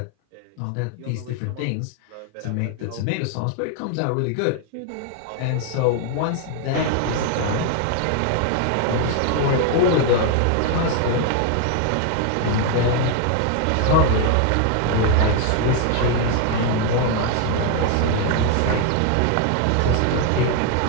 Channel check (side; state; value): both; different; correlation 0.01